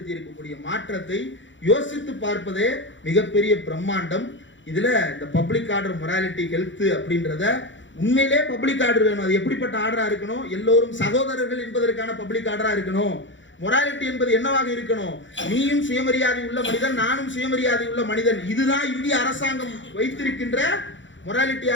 இருக்கக்கூடிய மாற்றத்தை யோசித்து பார்ப்பதே மிகப்பெரிய பிரம்மாண்டம். இதுல இந்த பப்ளிக் ஆர்டர் மொராலிட்டி ஹெல்த் அப்படின்றத உண்மையிலே பப்ளிக் ஆர்டர் வேணும். அது எப்படிப்பட்ட ஆர்டரா இருக்கணும்? எல்லோரும் சகோதரர்கள் என்பதற்கான பப்ளிக் ஆர்டரா இருக்கணும். மொராலிட்டி என்பது என்னவாக இருக்கணும்? நீயும் சுயமரியாதை உள்ள மனிதன், நானும் சுயமரியாதை உள்ள மனிதன். இதுதான் இந்திய அரசாங்கம் வைத்திருக்கின்ற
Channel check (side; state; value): right; late; 0.54 ms